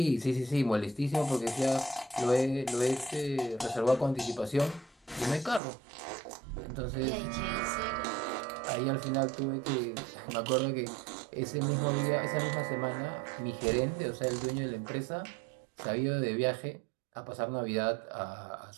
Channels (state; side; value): drops out; left; at 5.6 s